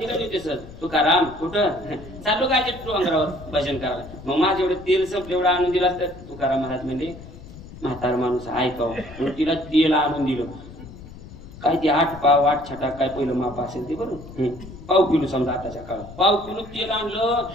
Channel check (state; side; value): noise; left; rumble, 16 dB below the sound